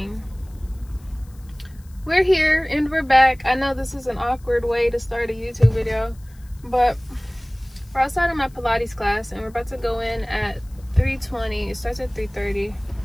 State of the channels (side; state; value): left; noise; hiss, 29 dB below the sound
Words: We're here and we're back. I know this is an awkward way to start a YouTube video, but we're outside of my Pilates class and we're about to go in at 3:20. It starts at 3:30.